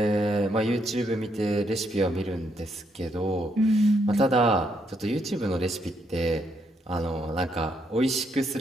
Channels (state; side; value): normal; both; correlation 0.75